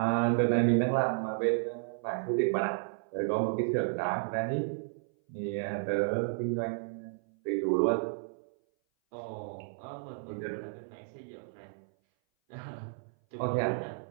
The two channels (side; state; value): left; silent; 56 dB below the other